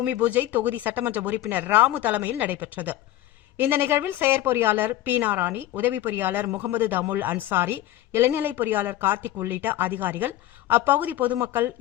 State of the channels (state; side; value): quieter; right; 14.4 dB